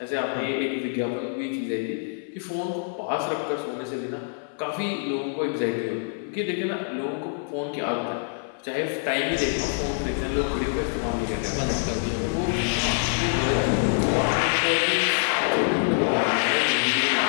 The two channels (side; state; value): right; silent; 61 dB below the other